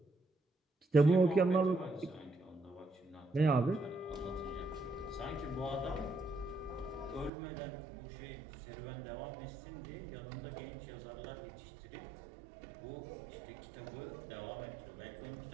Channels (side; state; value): left; drops out; at 7.3 s